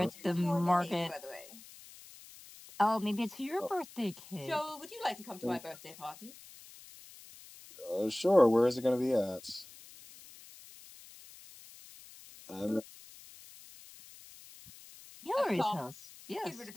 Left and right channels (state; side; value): noise; left; hiss, 19 dB below the sound